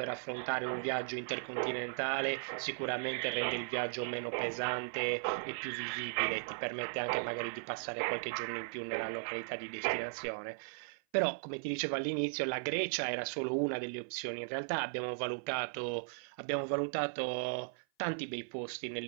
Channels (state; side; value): silent; left; 53 dB below the other